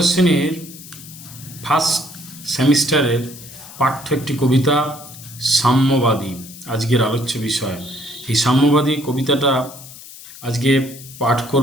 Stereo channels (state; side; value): noise; left; hiss, 16 dB below the sound